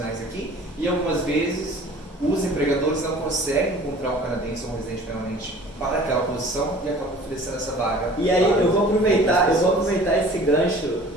aqui e algumas vezes os empregadores não conseguem encontrar um canadense ou um residente permanente para aquela posição e acabam oferecendo essa vaga. E aí eu vou aproveitar esse gancho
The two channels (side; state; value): both; normal; correlation 0.47